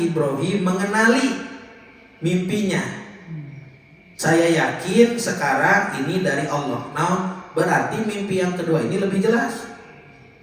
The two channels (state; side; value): identical; both; correlation 1.00